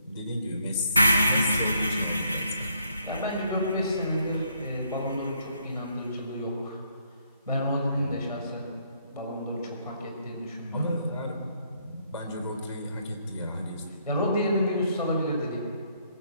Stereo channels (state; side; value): inverted; both; correlation -0.71